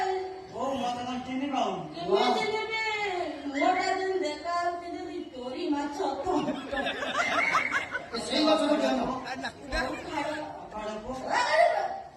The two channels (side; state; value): both; identical; correlation 1.00